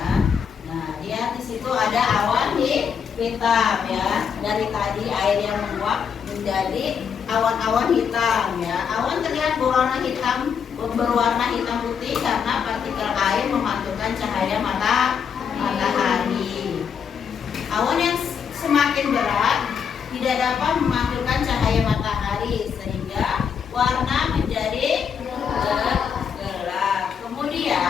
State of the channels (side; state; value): right; quieter; 7.0 dB